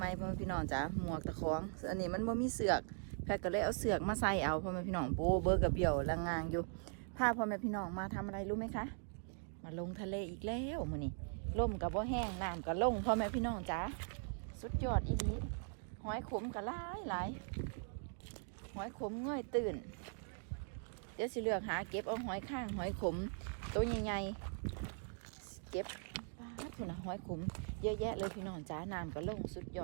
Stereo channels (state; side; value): silent; left; 51 dB below the other